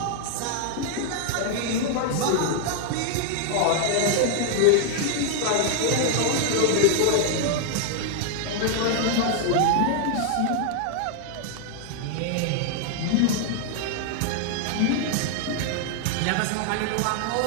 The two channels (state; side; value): different; both; correlation 0.00